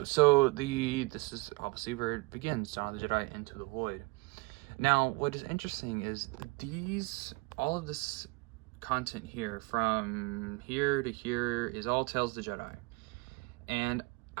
So this is obviously where it begins, Dawn of the Jedi Into the Void. Now, what is interesting is all of this content here, from here to here, is all Tales of the Jedi. And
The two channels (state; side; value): quieter; left; 25.7 dB